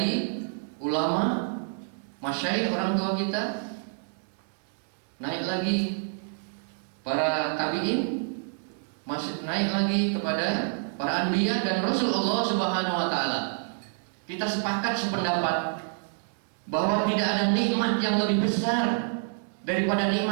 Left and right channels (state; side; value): silent; left; 59 dB below the other